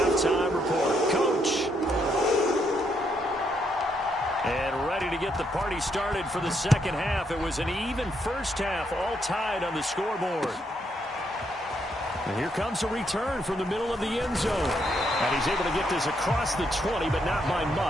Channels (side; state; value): both; normal; correlation 0.76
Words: report. Coach. And ready to get the party started for the second half. It was an even first half, all tied on the scoreboard. And here comes a return from the middle of the end zone. And he's able to get this across the 20, but not by